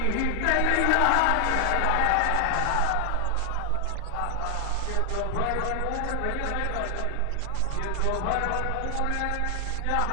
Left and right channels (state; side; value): different; both; correlation 0.00